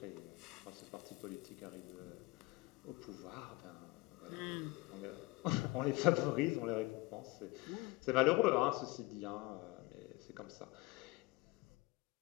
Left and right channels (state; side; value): quieter; right; 22.1 dB